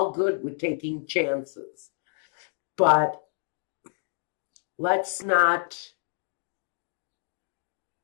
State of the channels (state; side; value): silent; right; digital silence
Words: good with taking chances. But let's not